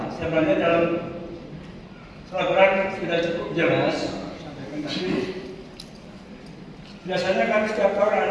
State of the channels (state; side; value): identical; both; correlation 1.00